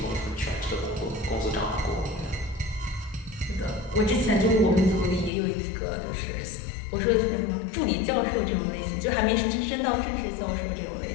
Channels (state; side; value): drops out; right; at 5.3 s